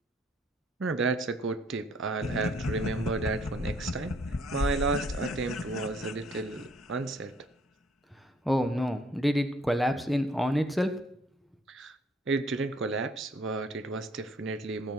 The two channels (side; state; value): both; normal; correlation 0.62